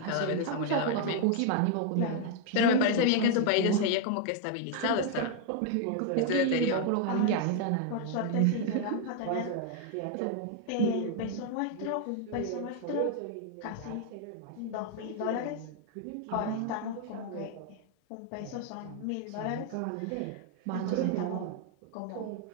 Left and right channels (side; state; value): both; different; correlation 0.00